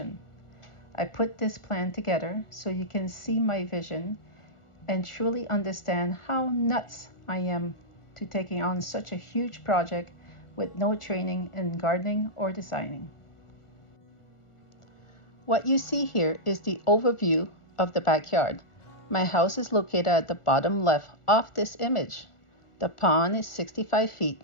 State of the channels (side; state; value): right; late; 1.4 ms